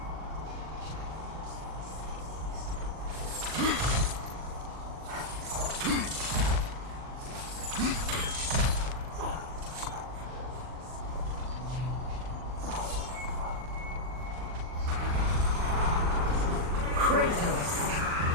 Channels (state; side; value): late; left; 39 ms